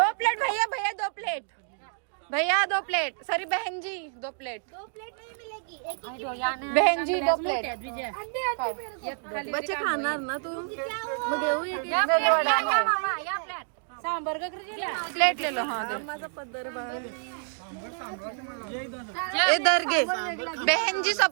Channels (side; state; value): left; silent; 59 dB below the other